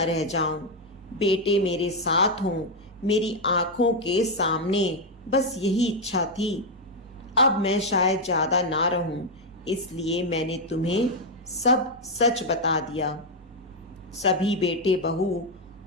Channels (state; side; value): normal; both; correlation 0.02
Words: रह जाऊं, बेटे मेरे साथ हों, मेरी आंखों के सामने, बस यही इच्छा थी। अब मैं शायद ज्यादा ना रहूं, इसलिए मैंने तुम्हें सब सच बता दिया। सभी बेटे बहू